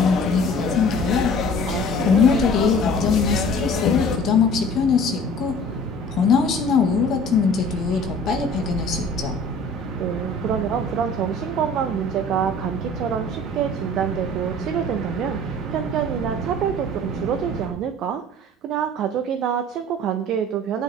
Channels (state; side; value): normal; both; correlation 0.47